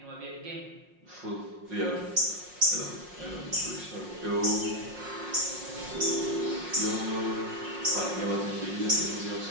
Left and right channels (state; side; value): late; left; 5.6 ms